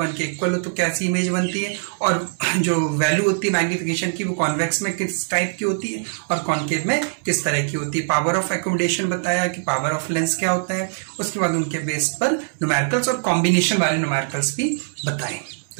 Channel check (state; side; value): silent; left; digital silence